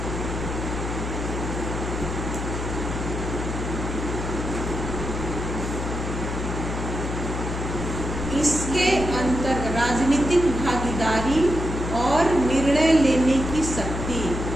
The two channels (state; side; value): noise; left; hum, 4 dB below the sound